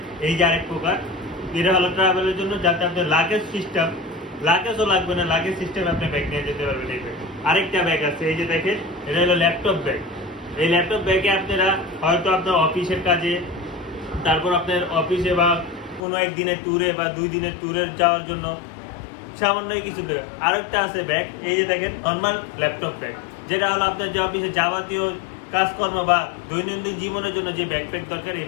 এই যে আরেক প্রকার, এটা হলো ট্রাভেলের জন্য, যাতে আপনার লাগেজও লাগবে না, লাগেজ সিস্টেম আপনি ব্যাগ নিয়ে যেতে পারবেন। এই ব্যাগ আরেকটা ব্যাগ আছে, এই যে দেখেন এটা হলো ল্যাপটপ ব্যাগ। এই ল্যাপটপ ব্যাগে আপনারা হয়তো আপনার অফিসের কাজে, তারপর আপনার অফিসে বা কোনো একদিনের ট্যুরে বা 2 দিনের ট্যুরে যাওয়ার জন্য সামান্য কিছু ব্যাগ। আরেকটা আছে ব্যাগ, এই যে দেখেন নর্মাল ল্যাপটপ ব্যাগ, যেটা হলো আপনার যে অফিসে যাবতীয় কাজকর্ম বা দৈনন্দিন জীবনের জন্য যে ব্যাকপ্যাক দরকার, এই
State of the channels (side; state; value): right; drops out; at 16.0 s